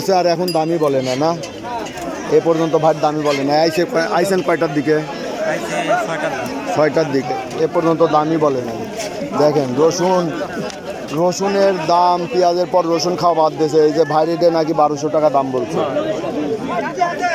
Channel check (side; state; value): both; identical; correlation 1.00